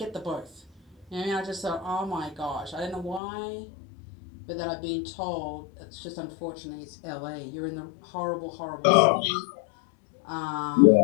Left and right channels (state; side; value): drops out; right; at 3.2 s